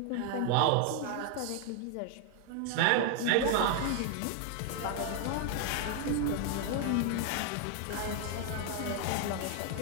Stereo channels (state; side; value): different; both; correlation 0.00